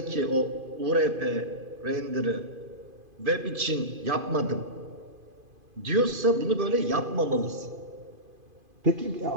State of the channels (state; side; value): late; left; 2.5 ms